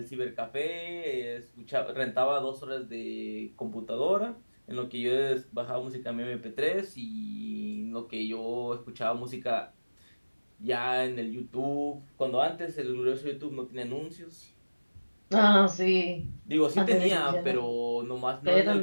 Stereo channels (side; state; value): both; inverted; correlation -1.00